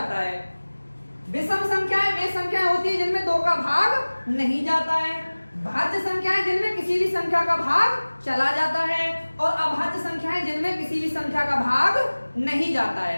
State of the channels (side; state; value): both; inverted; correlation -1.00